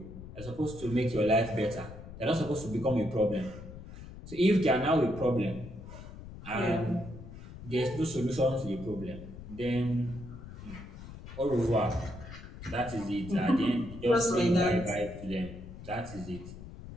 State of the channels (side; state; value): left; noise; rumble, 13 dB below the sound